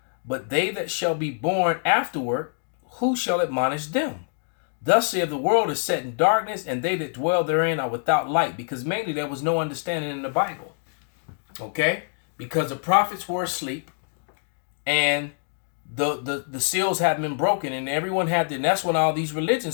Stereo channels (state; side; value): silent; right; digital silence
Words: but they that shall be born afterward, who shall admonish them? Thus saith the world is set in darkness, and they that dwell therein are without light, because mainly there was no understanding in the Bible. Okay? Because the prophets were asleep, and the seals hadn't been broken, and everyone had and that's when all these